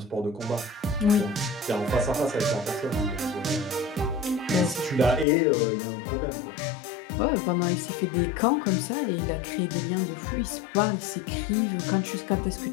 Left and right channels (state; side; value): drops out; right; at 5.2 s